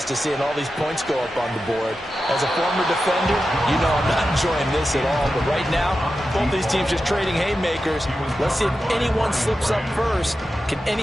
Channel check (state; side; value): normal; both; correlation 0.91